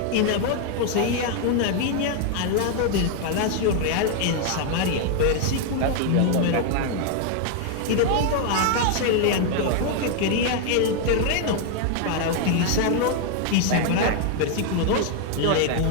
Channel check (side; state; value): both; different; correlation 0.00